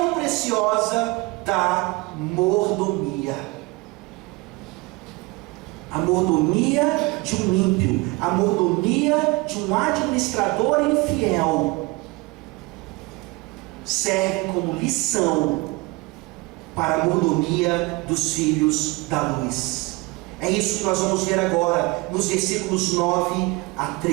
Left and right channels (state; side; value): quieter; left; 24.3 dB